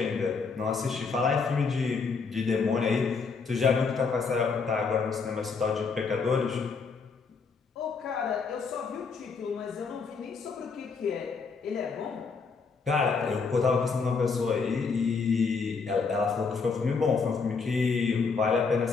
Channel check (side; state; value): right; quieter; 5.0 dB